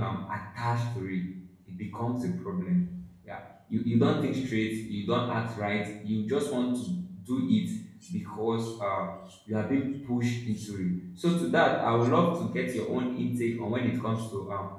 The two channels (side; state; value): both; identical; correlation 1.00